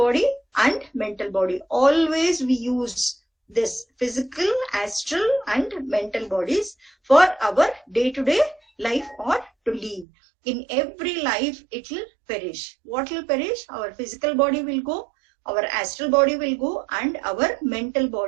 and mental body. Always we use this physical, astral and mental bodies for our day-to-day life or to live. In every life it will perish. What will perish? Our physical body will go, our astral body will go, and our mental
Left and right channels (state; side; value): drops out; left; at 10.1 s